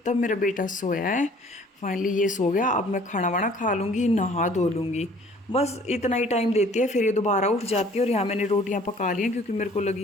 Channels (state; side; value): normal; both; correlation 0.54